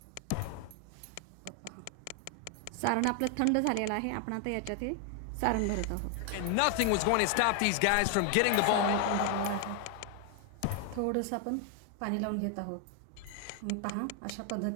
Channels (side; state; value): both; different; correlation 0.00